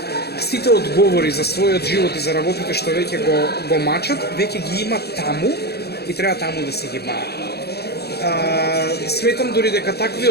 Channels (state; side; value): late; right; 0.47 ms